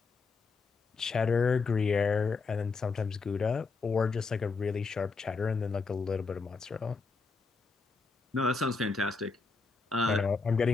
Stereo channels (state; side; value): quieter; right; 4.5 dB